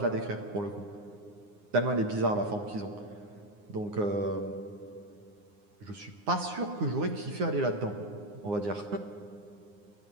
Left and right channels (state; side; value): late; left; 9.7 ms